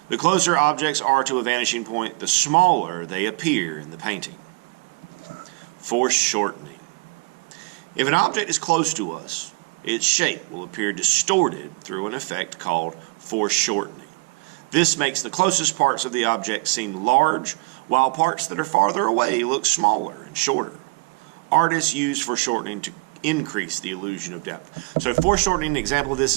The closer objects are to a vanishing point, the smaller they appear in the painting. Foreshortening. If an object is close to us, its shape will appear distorted through an effect called foreshortening. This makes the closest parts of the object seem large, while parts that are farther away look smaller and shorter. Artists use foreshortening to increase the illusion of depth. So foreshortening, an example of this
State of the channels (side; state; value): left; quieter; 29.0 dB